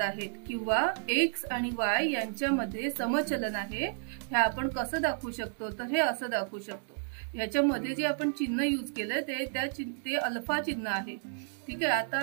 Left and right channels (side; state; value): left; silent; digital silence